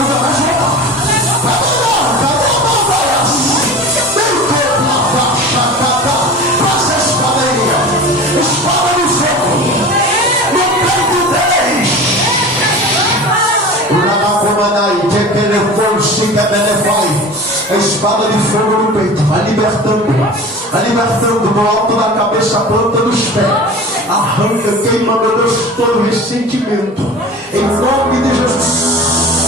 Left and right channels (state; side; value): normal; both; correlation 0.35